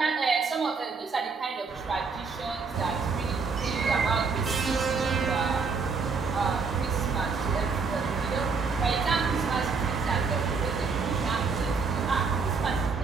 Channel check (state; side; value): quieter; left; 4.9 dB